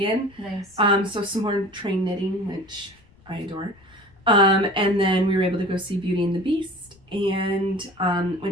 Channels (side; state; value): left; noise; rumble, 29 dB below the sound